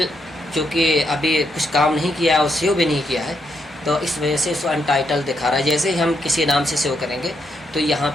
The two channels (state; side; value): normal; both; correlation 0.79